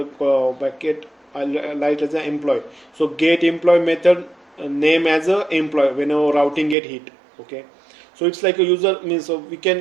bracket I'll write as an employee. So get employee method name as a employee whenever routing get hit. Okay, so it's like a user means, so we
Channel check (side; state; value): left; drops out; at 6.8 s